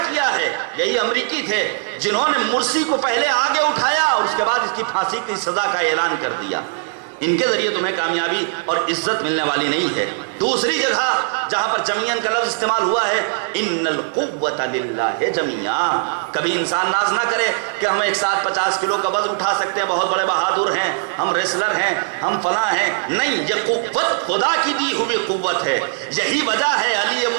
کیا ہے۔ یہی امریکی تھے جنہوں نے مرسی کو پہلے آگے اٹھایا اور اس کے بعد اس کی پھانسی کی سزا کا اعلان کر دیا۔ ان کے ذریعے تمہیں کامیابی اور عزت ملنے والی نہیں ہے۔ دوسری جگہ جہاں پر جمیعاً کا لفظ استعمال ہوا ہے، ان القوت للہ جمیعا۔ کبھی انسان ناز نہ کرے کہ ہم ایک ساتھ 50 کلو کا وزن اٹھا سکتے ہیں، بہت بڑے بہادر ہیں، ہم ریسلر ہیں، ہم فلاں ہیں۔ نہیں، یہ قوت خدا کی دی ہوئی قوت ہے۔ یہی وجہ ہے علی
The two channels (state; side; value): silent; left; 66 dB below the other